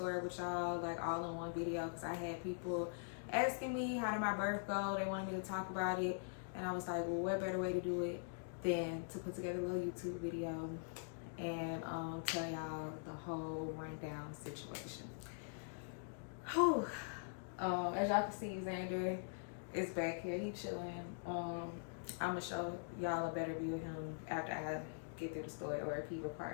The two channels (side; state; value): right; silent; digital silence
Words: with y'all, like all in one video, because I had people asking me how did my birth go. They wanted me to talk about it, and I was like, well, what better way to do it than to put together a little YouTube video and tell y'all the whole rundown situation. Whew. As y'all can see, Xander is back here. He chilling. I'm gonna show y'all a better view of him after I get through the story, or if he